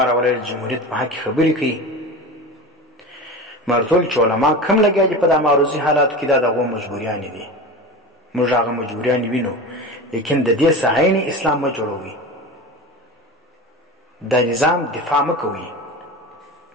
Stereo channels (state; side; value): normal; both; correlation 0.29